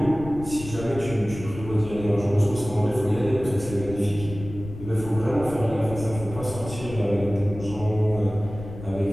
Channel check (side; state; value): left; noise; rumble, 12 dB below the sound